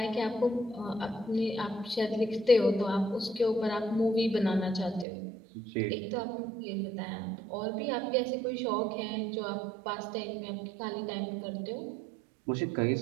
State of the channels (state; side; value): drops out; left; at 5.1 s